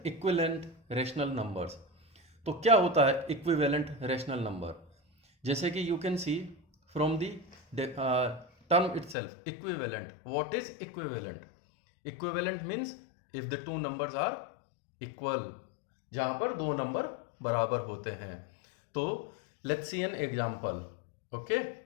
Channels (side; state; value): right; drops out; at 9.2 s